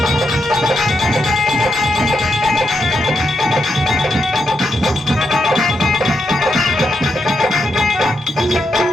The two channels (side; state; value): both; normal; correlation 0.82